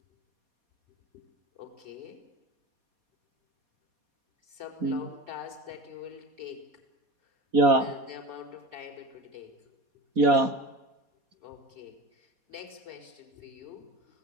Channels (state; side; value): late; left; 4.2 ms